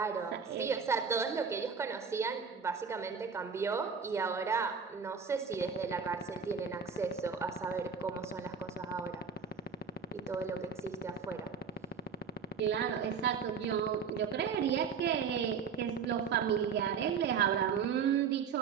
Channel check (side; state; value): left; quieter; 6.1 dB